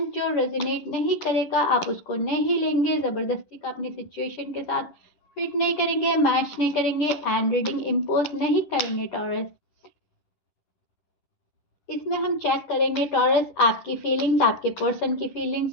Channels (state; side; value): late; right; 10 ms